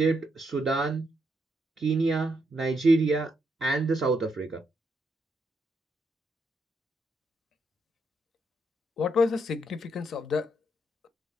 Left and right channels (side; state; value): both; normal; correlation 0.78